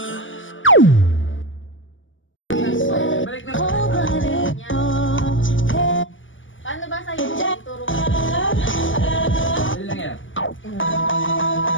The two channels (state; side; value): late; right; 0.57 ms